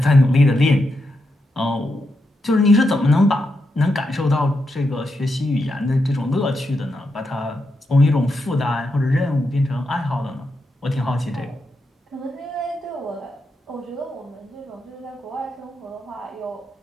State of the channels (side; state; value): both; normal; correlation 0.84